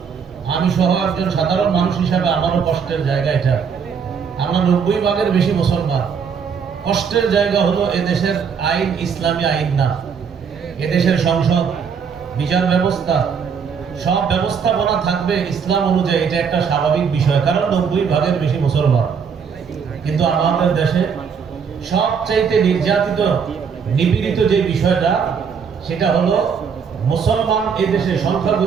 আমি সহ একজন সাধারণ মানুষ হিসাবে আমারও কষ্টের জায়গা এটা। আমরা 90 ভাগের বেশি মুসলমান। কষ্টের জায়গা হলো এদেশের আইন ইসলামী আইন না, এদেশের সংসদ, বিচার ব্যবস্থা, সব ব্যবস্থাপনা থাকবে ইসলাম অনুযায়ী। এটা একটা স্বাভাবিক বিষয়, কারণ 90 ভাগের বেশি মুসলমান। কিন্তু আমাদের দেশে সবচাইতে নির্যাতিত, নিপীড়িত যে বিষয়টা, সেটা হলো মুসলমান এই দেশে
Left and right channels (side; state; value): left; quieter; 6.5 dB